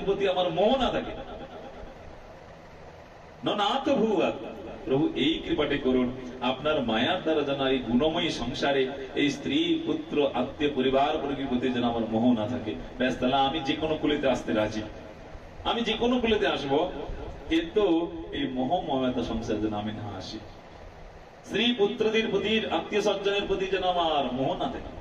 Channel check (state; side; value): identical; both; correlation 1.00